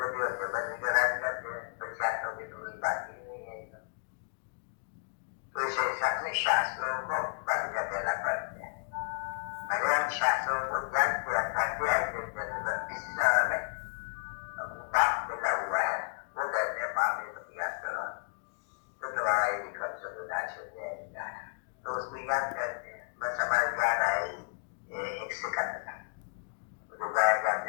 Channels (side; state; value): right; silent; digital silence